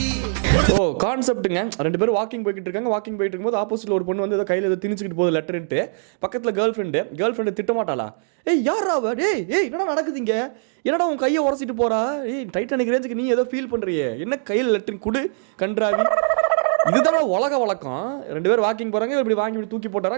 ஓ கான்செப்ட்டுங்க. 2 பேரும் வாக்கிங் போய்கிட்டு இருக்காங்க. வாக்கிங் போயிட்டு இருக்கும்போது ஆப்போசிட்ல ஒரு பொண்ணு வந்து ஏதோ கையில் ஏதோ திணிச்சுக்கிட்டு போகுது லெட்டர்ன்ட்டு. பக்கத்தில் கேர்ள் ஃப்ரெண்டு திட்ட மாட்டாளா? ஏய் யாரா அவ? ஏய் என்னடா நடக்குதுங்க? என்னடா உன் கையை உரசிட்டு போறா? ஏய் டைட்டானிக் ரேஞ்சுக்கு நீ ஏதோ ஃபீல் பண்றியே, என்ன கையில் லெட்டர் குடு கன்றாவி. இதுதான் உலக வழக்கம். 2 பேர் வாக்கிங் போறாங்க, இப்படி வாங்கி இப்படி தூக்கி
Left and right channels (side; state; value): left; silent; digital silence